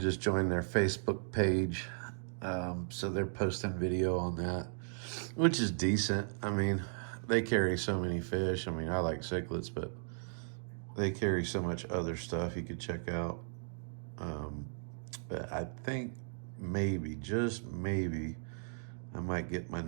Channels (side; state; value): left; silent; digital silence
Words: joined their Facebook page, so they're posting video on that, which is decent. I mean, they carry so many fish. I mean, I like cichlids, but they carry so much other stuff you could check out. But I think maybe, just maybe, I might get my